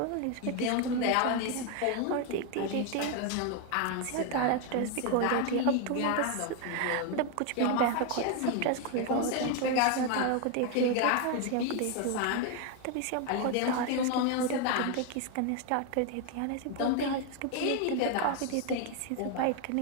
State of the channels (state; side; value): different; both; correlation 0.01